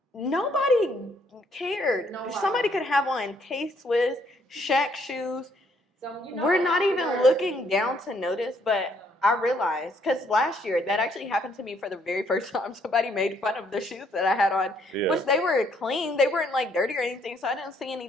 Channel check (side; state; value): both; normal; correlation 0.68